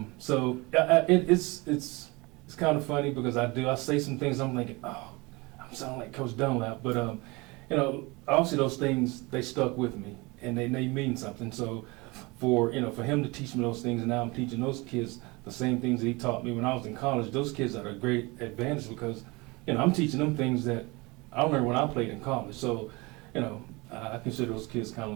It's kind of funny, because I say some things I'm thinking, oh, I'm sounding like Coach Dunlap, but obviously those things, they stuck with me, and they mean something. So for him to teach me those things, and now I'm teaching those kids the same things that he taught me when I was in college. Those kids are a great advantage, because I'm teaching them things that I learned when I played in college. So I consider those kids kind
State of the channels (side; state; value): left; quieter; 25.0 dB